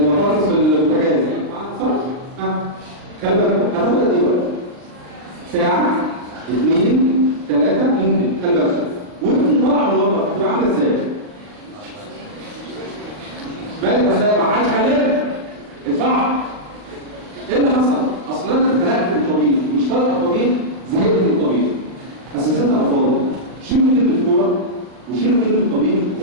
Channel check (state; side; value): late; left; 39 ms